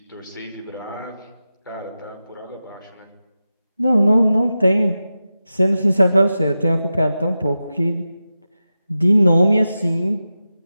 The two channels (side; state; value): both; inverted; correlation -0.92